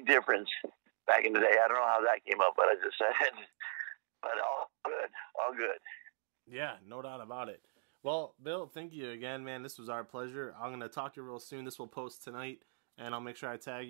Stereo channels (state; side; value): silent; left; digital silence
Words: difference back in the day. I don't know how that came up, but I just said it. But all good. Yeah, no doubt about it. Well, Bill, thank you again, man. This was our pleasure. I'm going to talk to you real soon. This will post tonight, and I'll make sure I tag